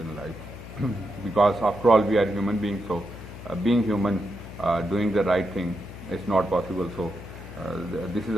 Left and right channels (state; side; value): noise; left; hum, 13 dB below the sound